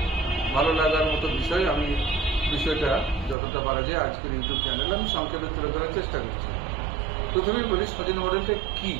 ভালো লাগার মতো বিষয়। আমি বিষয়টা যতটা পারা যায় আজকের ইউটিউব চ্যানেলে আমি সংক্ষেপে তুলে ধরার চেষ্টা করছি। প্রথমেই বলি সজনী মডেলটা কি।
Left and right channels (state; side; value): drops out; left; at 3.4 s